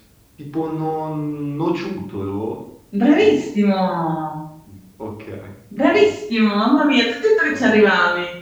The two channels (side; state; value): both; identical; correlation 1.00